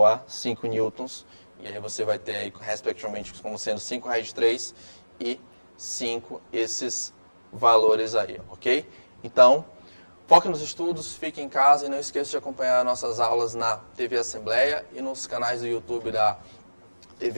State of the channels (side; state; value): both; inverted; correlation -1.00